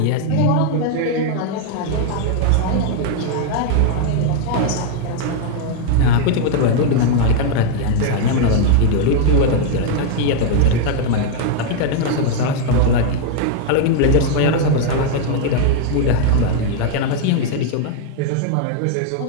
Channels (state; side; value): different; both; correlation 0.00